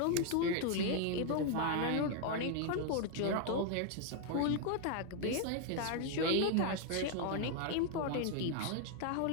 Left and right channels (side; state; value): both; different; correlation 0.00